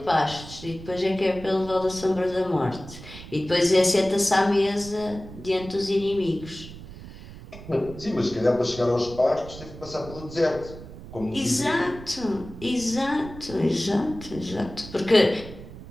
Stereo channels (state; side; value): noise; right; rumble, 15 dB below the sound